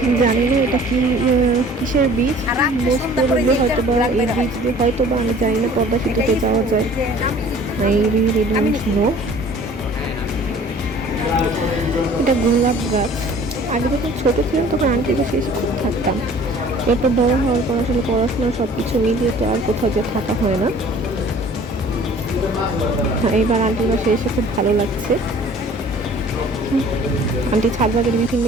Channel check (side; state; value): both; normal; correlation 0.50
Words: ঠিক জানি না এটা কিসের বীজ। মোস্ট প্রবাবলি হয়তো বা এই বীজ দিয়ে হয়তো বা, আমি জানি না, পদ্মা সেতুতে যাওয়া যায়। I really don't know. এটা গোলাপ গাছ। আগে যখন ছোট ছিলাম তখন আন্টির বাসায় এসে খুব থাকতাম। এরপর বড় হওয়ার পর আসলে পড়াশোনা সব কিছু মিলিয়ে তো আর কোথাও যে থাকা হয় না। এইবার আন্টির বাসায় এসে খুব ভালো লাগছে। আন্টি ছাদ বাগানে বিভিন্ন